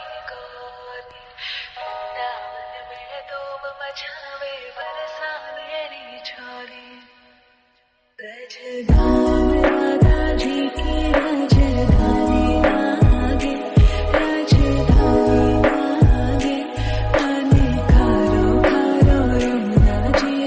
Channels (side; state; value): both; identical; correlation 1.00